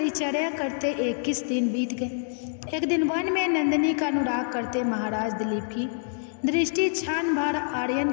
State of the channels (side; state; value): right; silent; digital silence